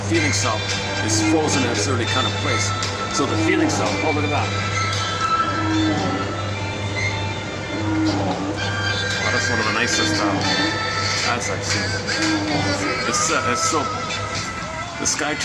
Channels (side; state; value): both; identical; correlation 1.00